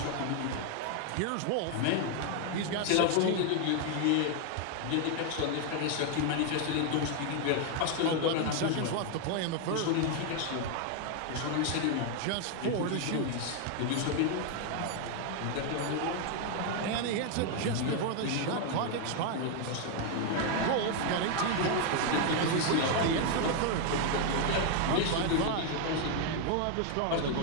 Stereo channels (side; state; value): both; different; correlation 0.01